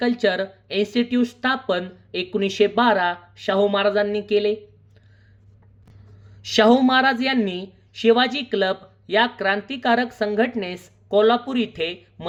इन्स्टिट्यूट स्थापन 1912 शाहू महाराजांनी केले. शाहू महाराज यांनी शिवाजी क्लब या क्रांतिकारक संघटनेस कोल्हापूर इथे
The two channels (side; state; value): both; identical; correlation 1.00